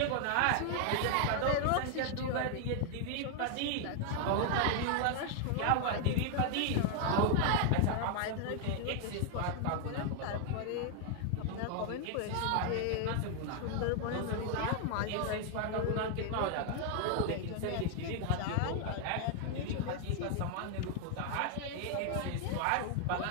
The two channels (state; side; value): different; both; correlation 0.00